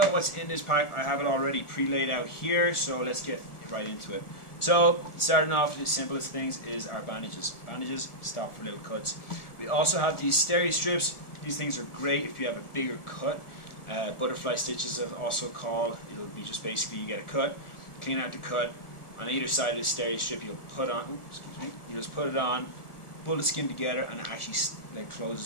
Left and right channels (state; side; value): late; right; 1.4 ms